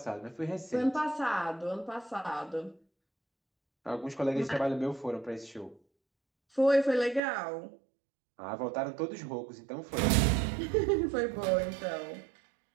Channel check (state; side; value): drops out; left; at 7.2 s